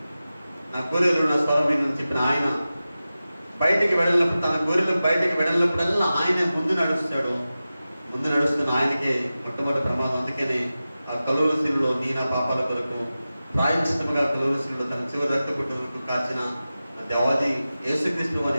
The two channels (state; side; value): inverted; both; correlation -0.95